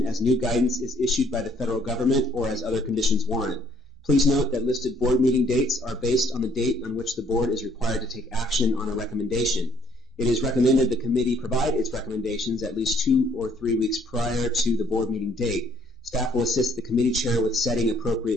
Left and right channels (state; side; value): normal; both; correlation 0.63